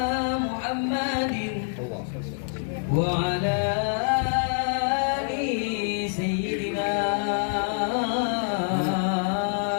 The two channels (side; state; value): right; silent; digital silence